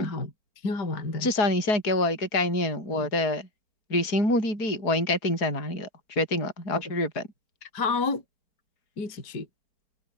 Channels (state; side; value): late; right; 4.4 ms